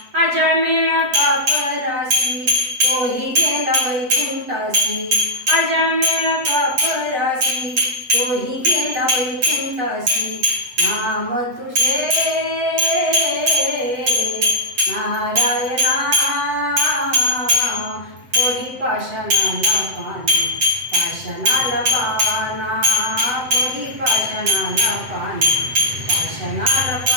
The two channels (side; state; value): left; late; 7.9 ms